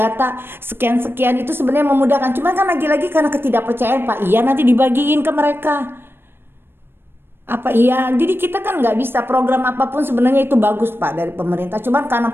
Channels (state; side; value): late; left; 0.10 ms